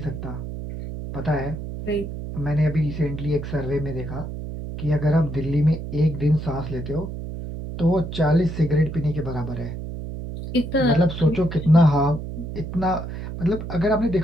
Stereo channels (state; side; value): noise; right; hum, 7 dB below the sound